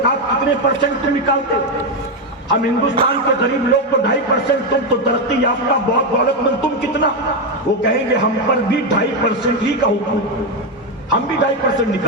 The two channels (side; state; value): both; normal; correlation 0.07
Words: کتنے % تم نکالتے؟ ہم ہندوستان کے غریب لوگ تو 2.5%، تم تو ترقی یافتہ بہت دولت مند، تم کتنا؟ وہ کہیں گے ہم پر بھی 2.5% ہی کا حکم، ہم بھی 2.5%